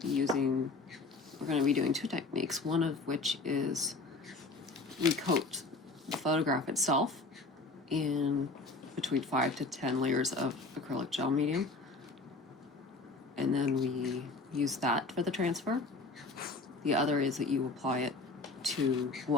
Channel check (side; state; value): right; quieter; 3.5 dB